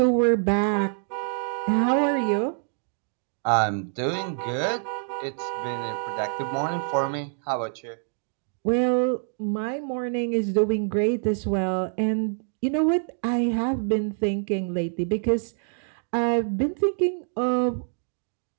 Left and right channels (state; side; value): silent; left; 61 dB below the other